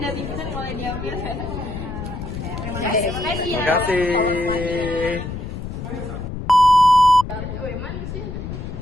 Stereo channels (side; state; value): left; noise; rumble, 7 dB below the sound